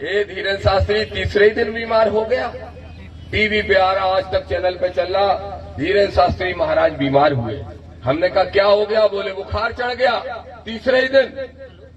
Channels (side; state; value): both; identical; correlation 1.00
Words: ये धीरेन्द्र शास्त्री तीसरे ही दिन बीमार हो गया। टीवी पे आ रहा, आज तक चैनल पे चल रहा, धीरेन्द्र शास्त्री महाराज बीमार हुए। हमने कहा क्या हो गया? बोले बुखार चढ़ गया तीसरे ही दिन।